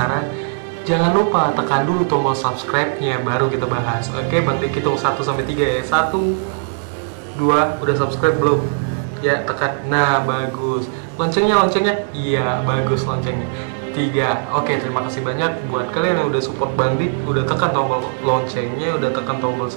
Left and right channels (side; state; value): left; silent; digital silence